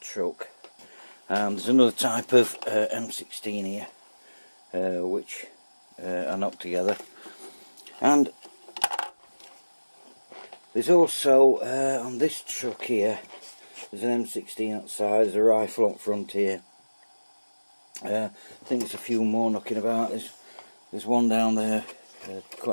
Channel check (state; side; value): inverted; both; correlation -1.00